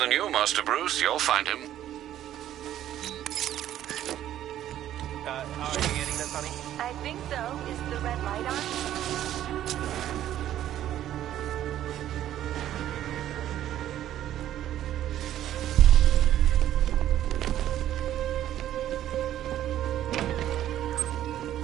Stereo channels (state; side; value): quieter; left; 12.1 dB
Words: you, Master Bruce. You'll find him. Are you getting this, honey? I think so. Is the red light on?